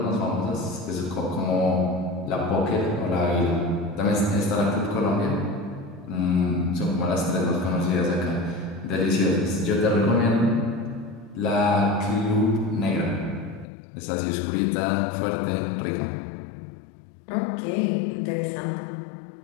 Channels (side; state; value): right; drops out; at 13.7 s